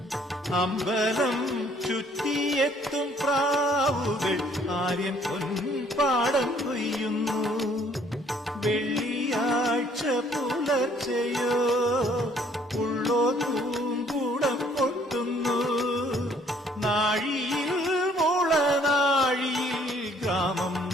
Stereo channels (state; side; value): normal; both; correlation 0.61